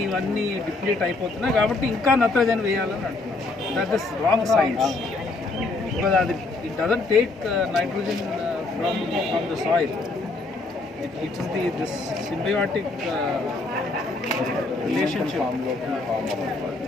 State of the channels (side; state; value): right; quieter; 3.4 dB